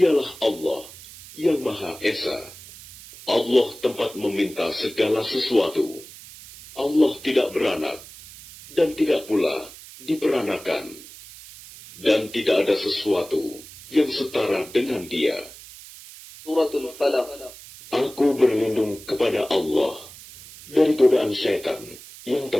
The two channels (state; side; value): noise; right; hiss, 17 dB below the sound